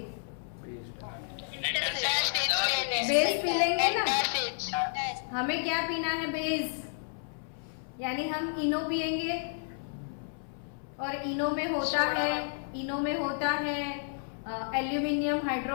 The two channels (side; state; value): right; silent; 57 dB below the other